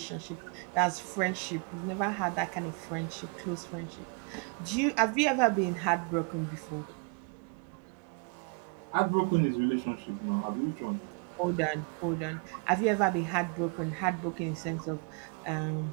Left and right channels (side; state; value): left; quieter; 36.5 dB